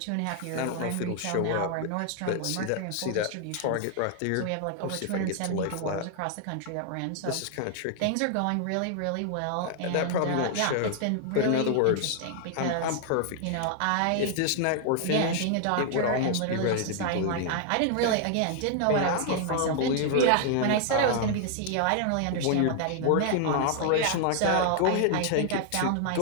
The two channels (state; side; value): different; both; correlation 0.00